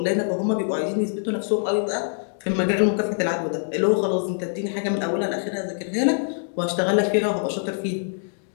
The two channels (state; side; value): silent; right; digital silence